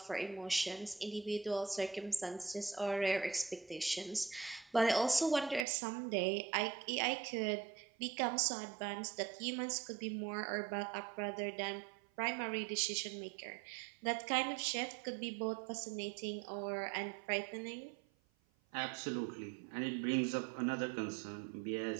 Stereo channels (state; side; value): drops out; left; at 5.7 s